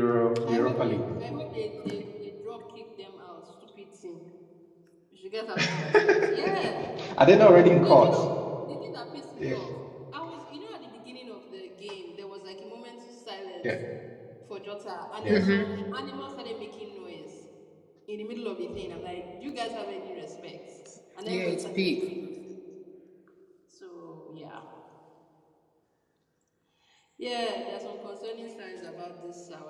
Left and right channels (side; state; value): both; identical; correlation 1.00